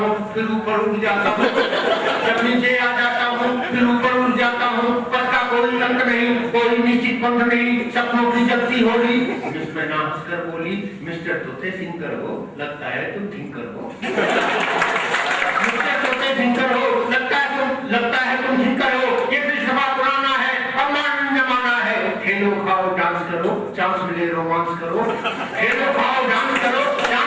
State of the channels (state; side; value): identical; both; correlation 1.00